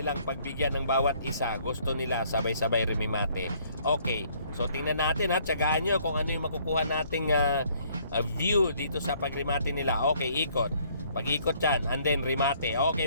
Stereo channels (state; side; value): inverted; both; correlation -0.63